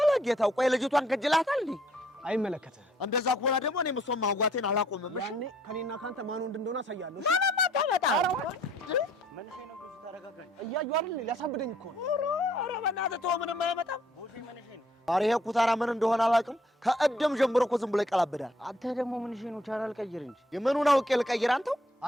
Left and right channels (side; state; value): both; normal; correlation 0.64